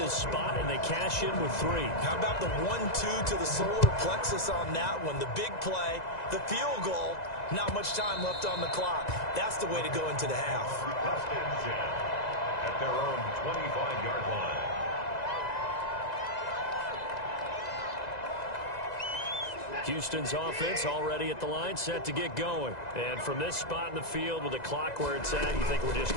spot, and they cash in with 3. How about the 1-2 to the solar plexus on that one? The big play, the field goal, not much time left on the clock. That's the way to go into the half. At their own 25-yard line. Houston's offense already at the line, set to get going. And from this spot in the field with the clock where it's at, you think we're just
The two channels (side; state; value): right; late; 2.0 ms